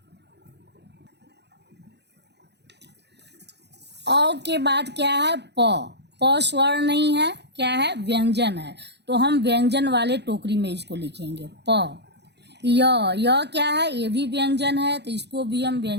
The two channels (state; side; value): late; left; 0.50 ms